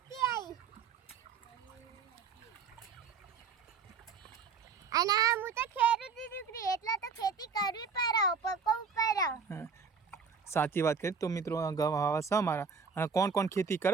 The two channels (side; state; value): left; quieter; 5.6 dB